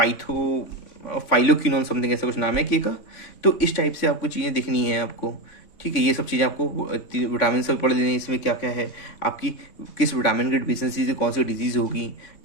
फाइलोक्विनोन, समथिंग ऐसा कुछ नाम है के का। तो इस टाइप से आपको चीज़ें दिखनी है आपको, ठीक है। ये सब चीज़ें आपको विटामिन से पढ़ लेनी है। इसमें क्या क्या है आपकी, किस विटामिन की डिफिशियंसी से कौन सी डिजीज़ होगी,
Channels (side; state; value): right; late; 3.6 ms